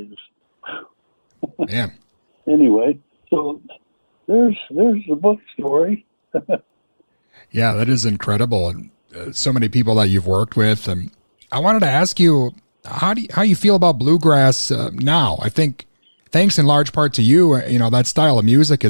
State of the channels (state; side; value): inverted; both; correlation -1.00